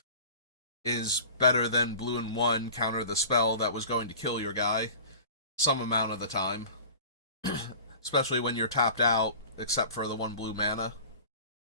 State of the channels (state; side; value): inverted; both; correlation -0.40